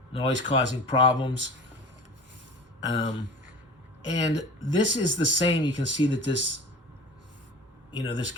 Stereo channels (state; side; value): normal; both; correlation 0.37